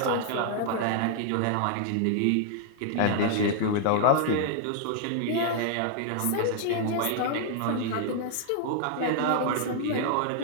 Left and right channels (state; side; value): different; both; correlation 0.00